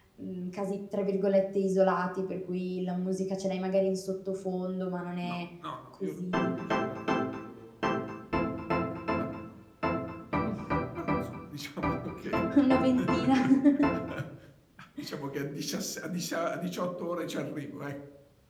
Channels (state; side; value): identical; both; correlation 1.00